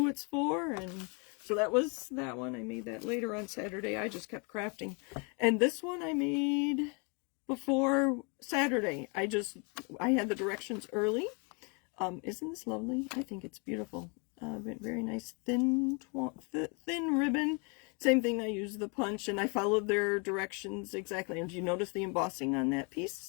it's for. And so that was that one. I made that later on Saturday. I just kept crafting. And this one I made before Saturday. I had the directions early. Isn't this lovely? I think it's beautiful. Very nice thin ribbon. Same thing, I used the punch and I followed their directions exactly. And do you notice the embossing on that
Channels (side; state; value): right; quieter; 34.3 dB